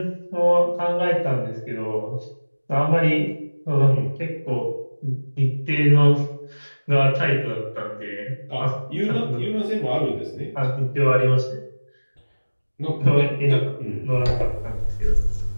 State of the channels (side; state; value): both; inverted; correlation -1.00